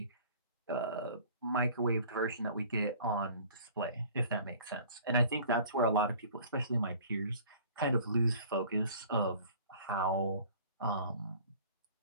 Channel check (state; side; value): inverted; both; correlation -0.49